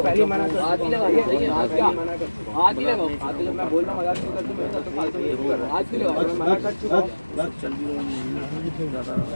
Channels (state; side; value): inverted; both; correlation -1.00